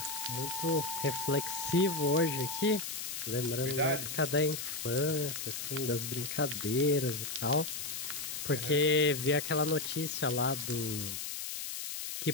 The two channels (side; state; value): left; noise; hiss, 5 dB below the sound